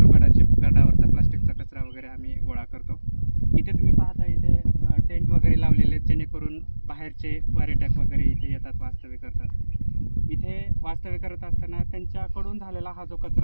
गडावरचा प्लास्टिकचा कचरा वगैरे आम्ही गोळा करतो. इथे तुम्ही पाहता, इथे टेंट वगैरे लावलेले आहेत, जेणेकरून बाहेरचे पर्यटक वगैरे इथे येतात, वास्तव्य करतात. इथे वास्तव्य करत असताना त्यांच्याकडून झालेला हा जो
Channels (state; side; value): inverted; both; correlation -1.00